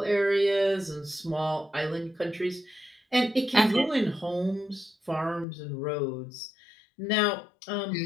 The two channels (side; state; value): right; drops out; at 5.5 s